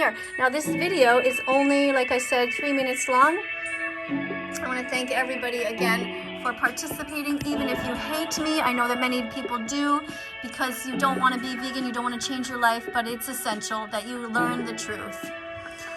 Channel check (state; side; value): identical; both; correlation 1.00